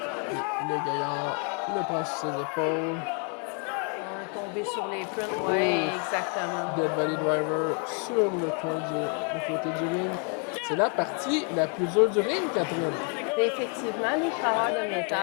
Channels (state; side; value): quieter; right; 39.1 dB